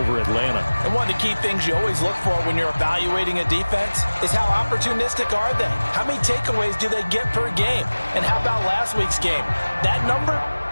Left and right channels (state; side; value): inverted; both; correlation -1.00